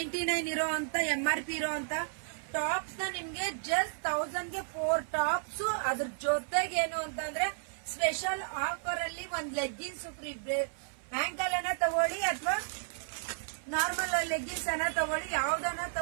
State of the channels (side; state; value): left; silent; 56 dB below the other